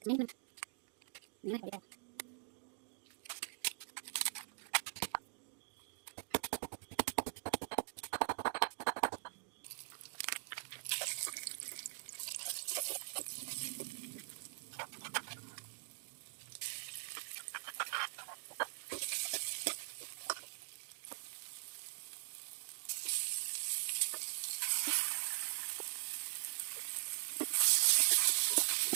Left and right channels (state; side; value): silent; left; digital silence